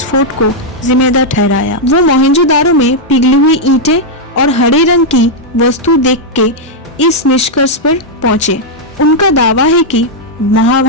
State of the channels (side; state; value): both; normal; correlation -0.03